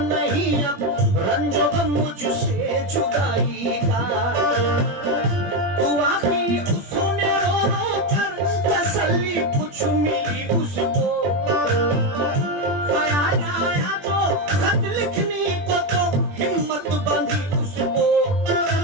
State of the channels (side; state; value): left; late; 21 ms